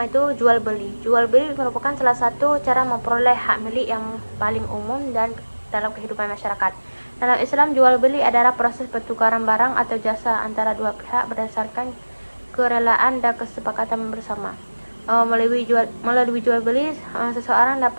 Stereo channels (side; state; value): both; inverted; correlation -1.00